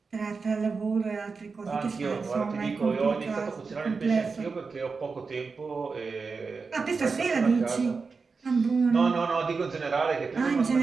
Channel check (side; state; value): left; quieter; 4.7 dB